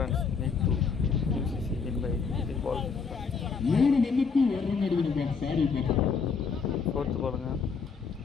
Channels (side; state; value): right; quieter; 5.4 dB